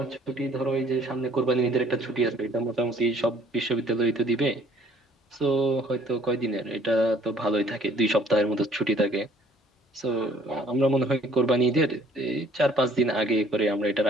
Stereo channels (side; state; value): both; normal; correlation 0.58